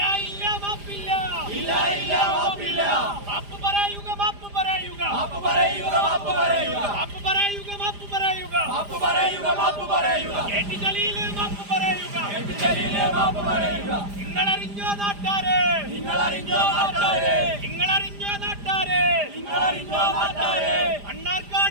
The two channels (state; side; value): late; left; 5.0 ms